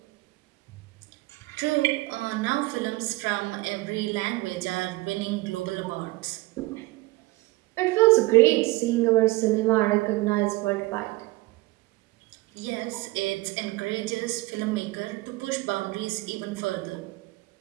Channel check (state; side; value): quieter; left; 20.6 dB